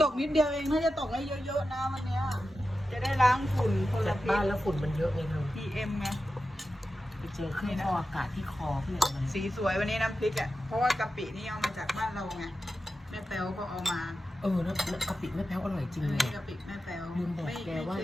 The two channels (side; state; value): both; normal; correlation 0.92